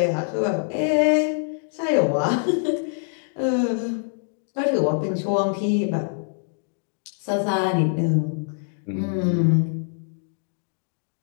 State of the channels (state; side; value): silent; right; digital silence